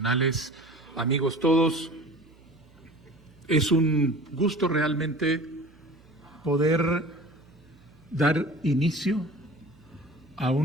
amigos todos, es un gusto realmente poder dar inicio a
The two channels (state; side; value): noise; right; hum, 27 dB below the sound